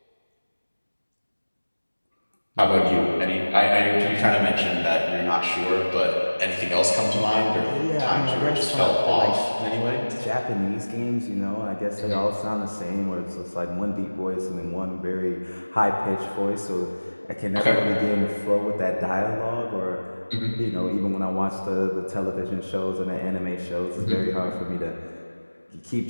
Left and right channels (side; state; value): both; inverted; correlation -1.00